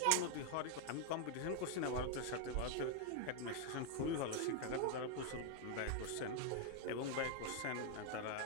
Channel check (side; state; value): both; different; correlation 0.00